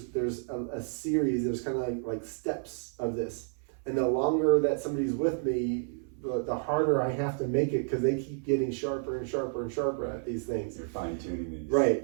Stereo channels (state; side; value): silent; left; 57 dB below the other